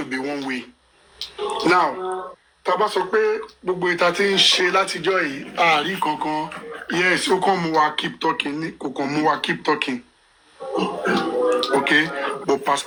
be one way. Now tá bá sọ pé gbogbo ìta tí ń ṣe látijọ́ yìí àárí kankan yes ó kàn mú wa keep talking ní kò kàn mú wa keep talking okay but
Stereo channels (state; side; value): identical; both; correlation 1.00